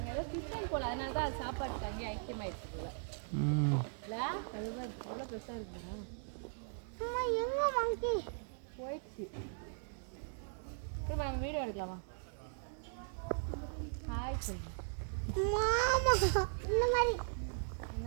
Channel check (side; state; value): left; silent; digital silence